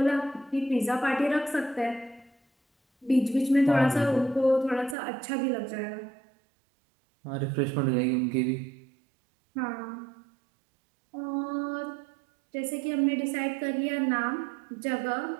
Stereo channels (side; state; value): left; drops out; at 5.0 s